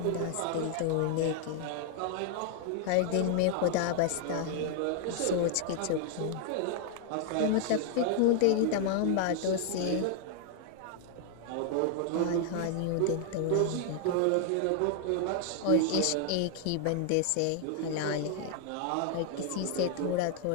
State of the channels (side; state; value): both; different; correlation 0.00